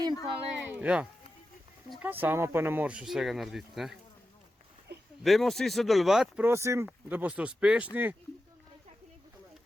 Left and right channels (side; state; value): both; normal; correlation 0.91